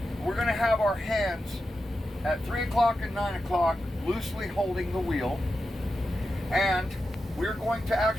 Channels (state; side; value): normal; both; correlation 0.90